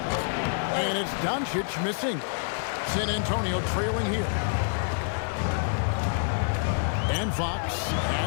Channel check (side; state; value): right; silent; digital silence